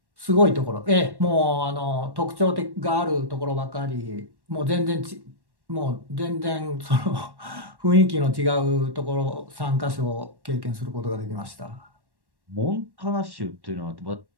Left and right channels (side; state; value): left; late; 1.1 ms